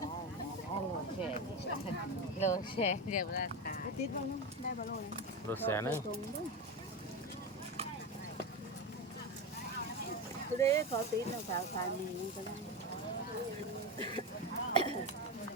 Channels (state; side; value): normal; both; correlation 0.18